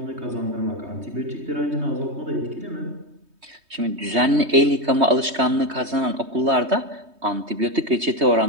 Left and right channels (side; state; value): left; late; 3.2 ms